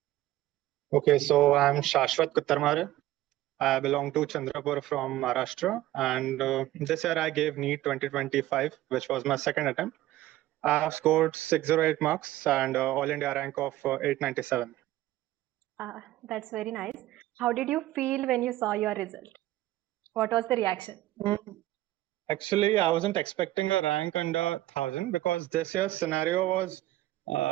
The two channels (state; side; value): quieter; left; 15.5 dB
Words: Okay, so I'm Shashwat Kuttarmare. I belong to Chandrapur from Maharashtra, and this year I gave NEET 2025, which was my second attempt. I have scored 608 marks and All India rank of 897. That's very nice. How did you feel when you saw your result? What was the reaction? Actually, I wasn't expecting a rank under 1,000 because this year's scenario was